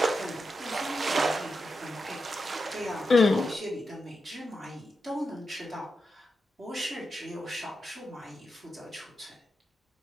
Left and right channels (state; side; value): normal; both; correlation 0.88